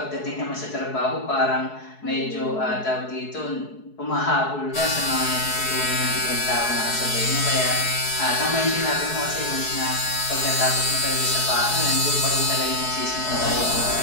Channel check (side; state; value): right; late; 4.7 ms